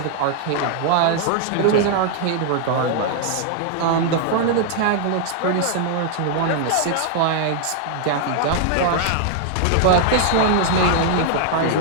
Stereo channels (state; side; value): different; both; correlation 0.00